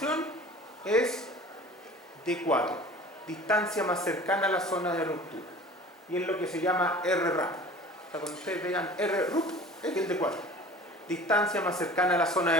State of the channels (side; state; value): both; normal; correlation 0.43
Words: es D4, distancia más cercana a la zona de ruptura, y es lo que se llama RRAP. O sea, cuando ustedes vean RRUP, es el D4, distancia más cercana a la zona